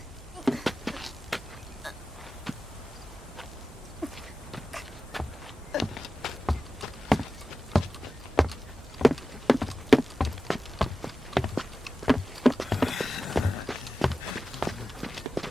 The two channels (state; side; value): normal; both; correlation 0.94